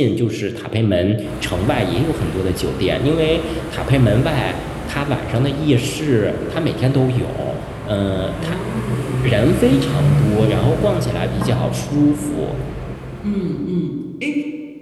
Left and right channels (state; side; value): identical; both; correlation 1.00